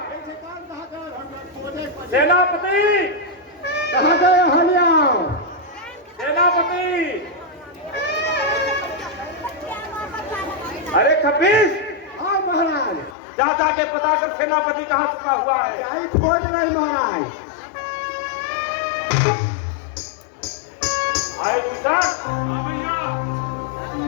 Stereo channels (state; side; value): drops out; right; at 13.2 s